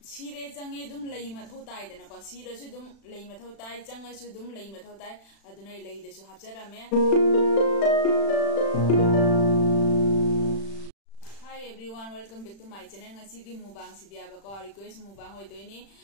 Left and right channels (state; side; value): late; right; 36 ms